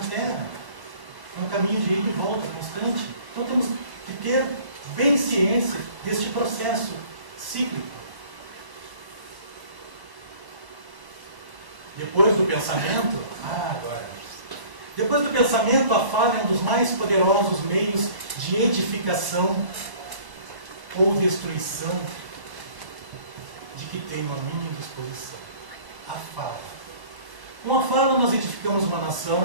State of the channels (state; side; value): late; left; 1.0 ms